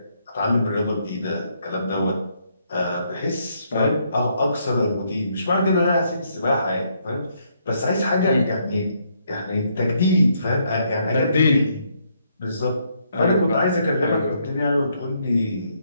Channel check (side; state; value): both; inverted; correlation -0.73